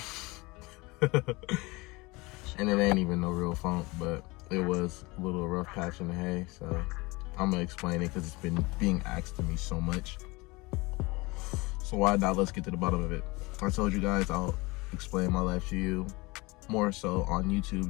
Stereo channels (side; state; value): right; quieter; 23.9 dB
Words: And it ain't even no real funk, but it was a little rough patch in the hay, so I'm gonna explain it because it's been being asked to me so much. So why not? Let's get to the bottom of it. I told you guys I'll explain my life to you more so on